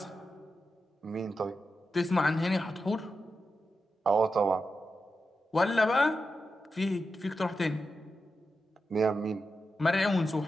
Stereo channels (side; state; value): both; normal; correlation 0.89